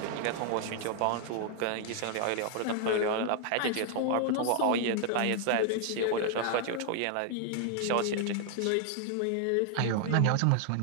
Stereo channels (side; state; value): both; different; correlation -0.01